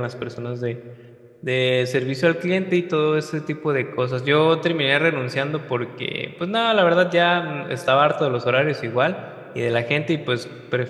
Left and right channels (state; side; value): identical; both; correlation 1.00